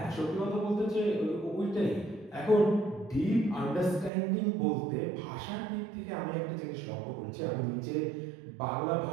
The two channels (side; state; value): left; drops out; at 4.1 s